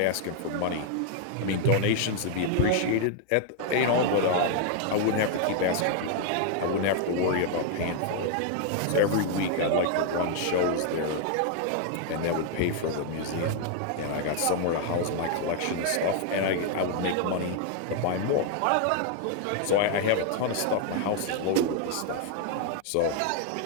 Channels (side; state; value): both; different; correlation 0.00